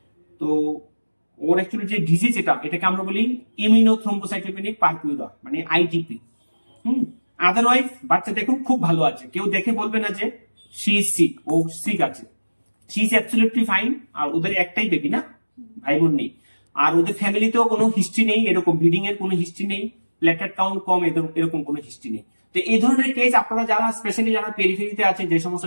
তো ওর অ্যাকচুয়ালি যে ডিজিজ এটাকে আমরা বলি ইমিউনোথ্রম্বোসাইটোপেনিক পারপিউরা, মানে আইটিপি। আদারওয়াইজ বাচ্চা দেখুন খুব ভালো আছে, কেউ দেখে বলবে না যে শি ইজ সিক, ও সিক আছে। She is absolutely fine. আর ওদের একটাই বেবি না, ভাই বোন নেই। আর ওদের ফ্যামিলিতেও কোনো হিস্ট্রি নেই, এরকম ব্লিডিং এর কোনো হিস্ট্রি নেই, প্লেটলেট কাউন্ট কম, এরকম কোনো হিস্ট্রি নেই। তো এই ধরনের কেস আপনারা যারা স্পেশালি যারা পেরিফেরিতে আছেন, যে সমস্ত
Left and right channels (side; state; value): both; inverted; correlation -1.00